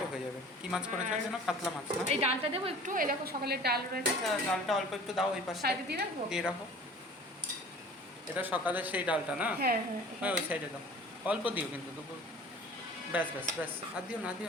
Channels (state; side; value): normal; both; correlation 0.45